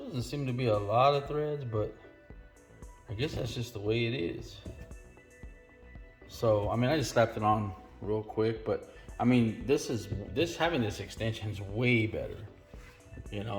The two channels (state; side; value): identical; both; correlation 1.00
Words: doesn't seem to be a lot of threads, but I guess that's just the way it is. So, I mean, I just slapped it on real quick, but I mean, having this extension is way better. You know,